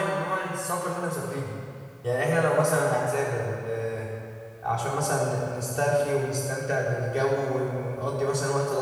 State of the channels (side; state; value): both; identical; correlation 1.00